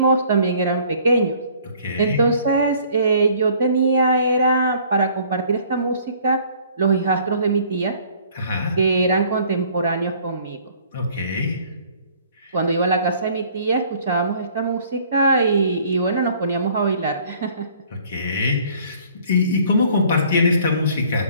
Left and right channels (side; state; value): both; inverted; correlation -0.56